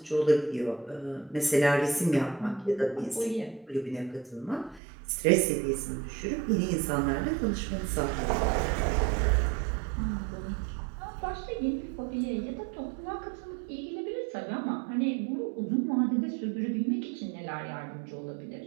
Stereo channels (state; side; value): drops out; left; at 4.8 s